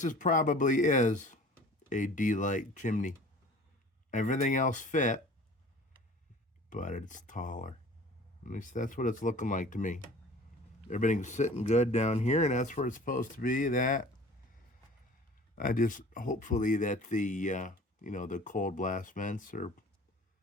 is a D-light chimney. Everything else fit, but it's taller. At least that's what it's looking like to me. Everything's sitting good down here, and that's where it's supposed to be. That I just hopefully that the the cold blast vents are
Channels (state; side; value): normal; both; correlation 0.45